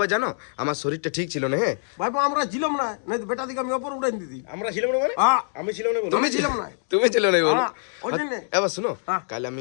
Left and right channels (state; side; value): silent; right; digital silence